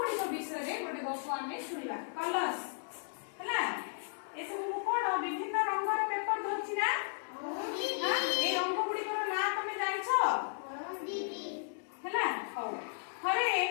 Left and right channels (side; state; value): right; silent; digital silence